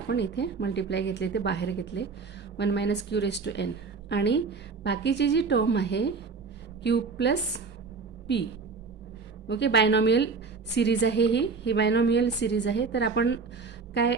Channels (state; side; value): quieter; left; 4.7 dB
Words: इथे multiply घेतले ते बाहेर घेतले 1 minus q raised to n आणि बाकीची जी टर्म आहे q plus p. Okay, binomial series आहे ही बायनॉमियल सिरीज आहे. तर आपण काय